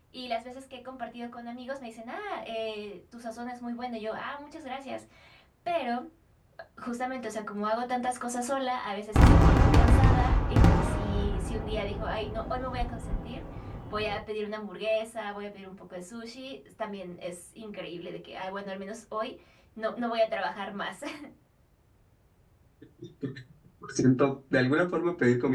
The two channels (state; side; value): identical; both; correlation 1.00